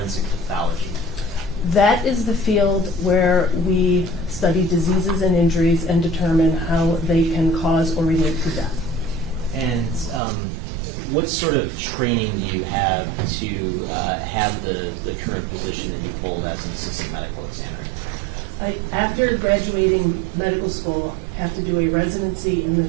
pathology? That is the field where we study diseases and injuries and determine how they can cause or relate to death. And what sort of training do you have to have the current position that you hold as an assistant medical examiner? After graduating medical school, I have to do a residency in the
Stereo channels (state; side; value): drops out; left; at 10.2 s